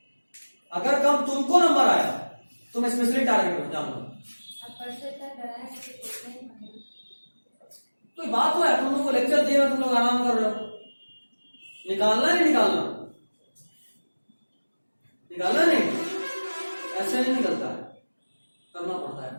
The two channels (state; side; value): inverted; both; correlation -1.00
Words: अगर कम तुमको नंबर आया तुम स्पेशली टारगेट हो, जान लो। कोई बात हुआ है, तुम लोग को लेक्चर दिए, तुम लोग आराम कर रहे हो। निकालना नहीं निकालना, निकालना नहीं, ऐसे नहीं निकलता है, करना पड़ता है।